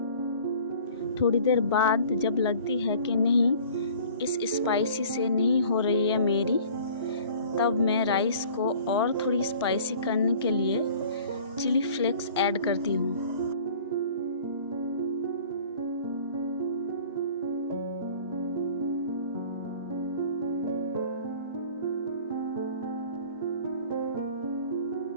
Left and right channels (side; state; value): both; inverted; correlation -0.48